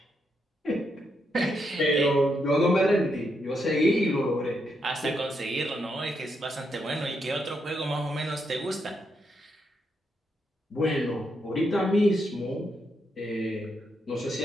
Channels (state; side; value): normal; both; correlation 0.80